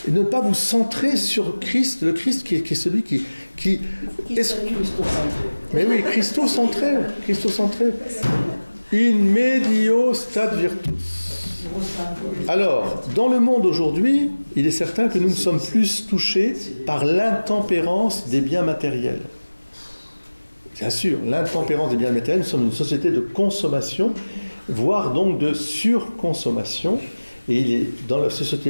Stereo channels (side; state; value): both; inverted; correlation -1.00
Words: et ne pas vous centrer sur Christ, le Christ qui est celui qui mais oui, Christo-centré. In medio stat virtus. Alors, dans le monde aujourd'hui, il est certain que nous ne sommes plus touchés par l'intempérance des biens matériels. Bien sûr, l'intempérance des biens matériels, nous sommes une société de consommation voire donc de surconsommation. Et dans la